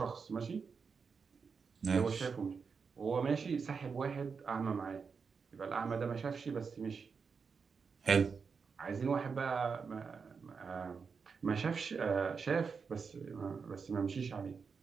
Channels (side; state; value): left; quieter; 5.5 dB